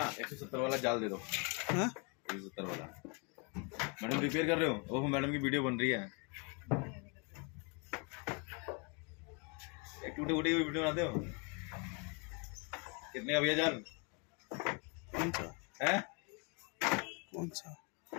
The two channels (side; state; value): right; quieter; 32.5 dB